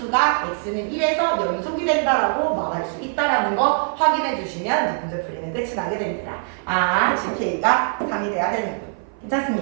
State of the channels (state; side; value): silent; left; 56 dB below the other